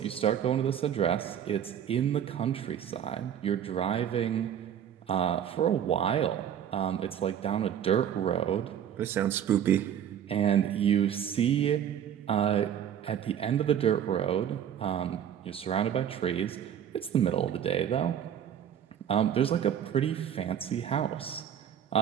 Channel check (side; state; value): left; quieter; 9.4 dB